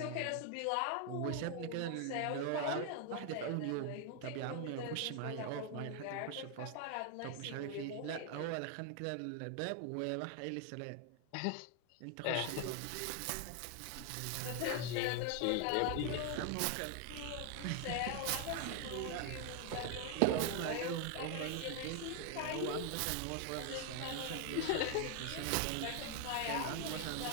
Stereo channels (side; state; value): both; different; correlation 0.00